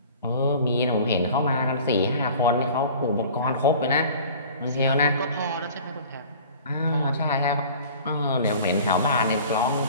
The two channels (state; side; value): inverted; both; correlation -0.44